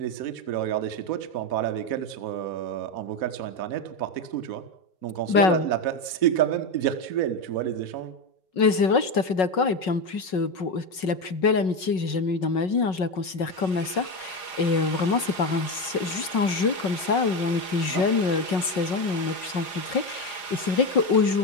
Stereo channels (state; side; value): late; right; 5.4 ms